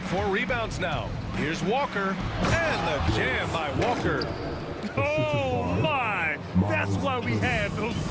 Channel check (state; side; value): identical; both; correlation 1.00